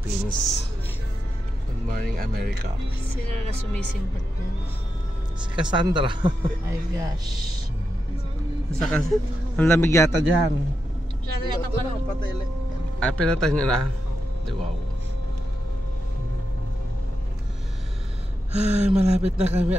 Good Morning America. Sino na sumisimbat na? Si Cassandra. Ay gosh. Ang lamig yata dyan. Masyado yata pa lang. Ay, pinatay nyo na. Di wow. Ay, malapit na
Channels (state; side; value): normal; both; correlation 0.87